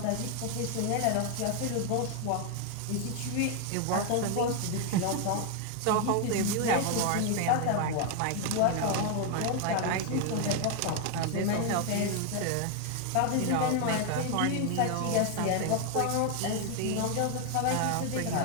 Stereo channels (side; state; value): both; different; correlation 0.00